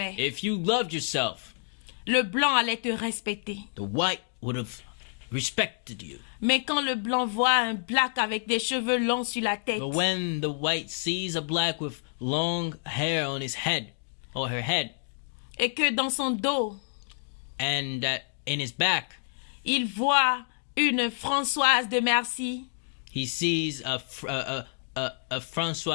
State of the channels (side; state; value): right; silent; digital silence